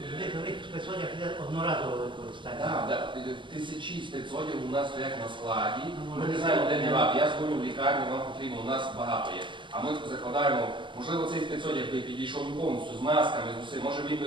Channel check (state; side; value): late; left; 0.24 ms